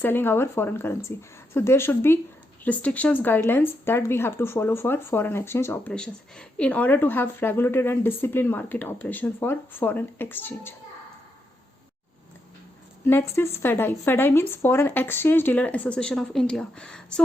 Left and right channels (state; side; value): normal; both; correlation 0.82